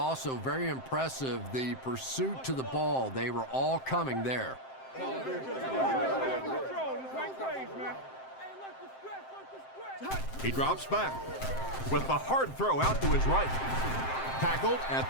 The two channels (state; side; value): late; right; 7.7 ms